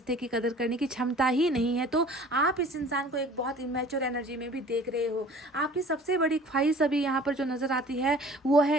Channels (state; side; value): normal; both; correlation 0.47